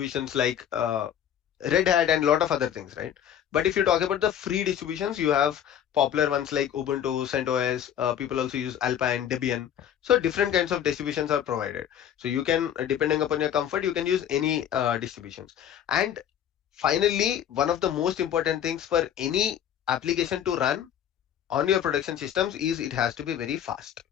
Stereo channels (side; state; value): right; quieter; 9.7 dB